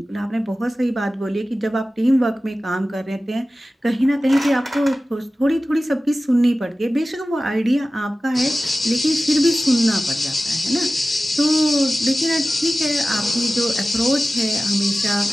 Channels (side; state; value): both; normal; correlation 0.96